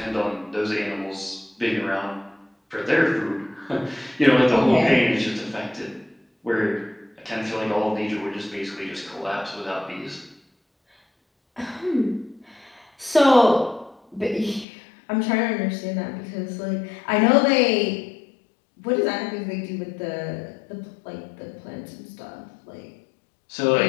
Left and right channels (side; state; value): right; drops out; at 14.7 s